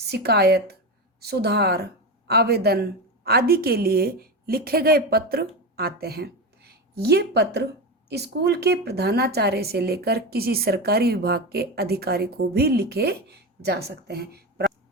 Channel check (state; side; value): normal; both; correlation 0.19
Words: सुधार, आवेदन आदि के लिए लिखे गए पत्र आते हैं। ये पत्र स्कूल के प्रधानाचार्य से लेकर किसी सरकारी विभाग के अधिकारी को भी लिखे जा सकते हैं।